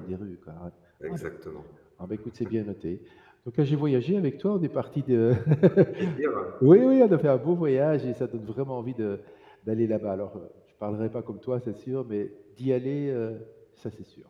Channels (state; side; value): identical; both; correlation 1.00